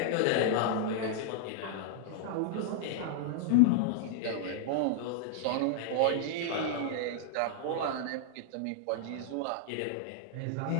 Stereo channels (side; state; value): both; different; correlation -0.01